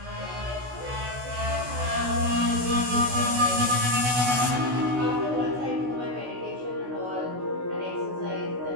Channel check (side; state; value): left; late; 16 ms